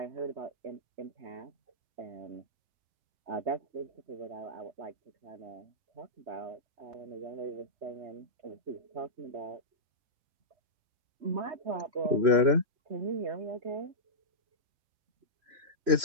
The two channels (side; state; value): left; late; 3.0 ms